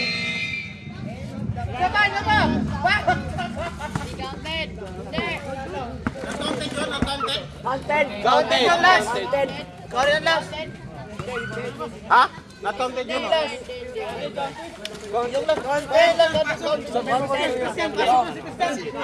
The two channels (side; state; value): both; identical; correlation 1.00